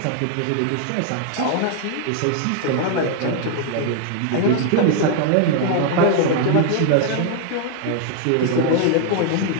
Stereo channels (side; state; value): both; different; correlation 0.00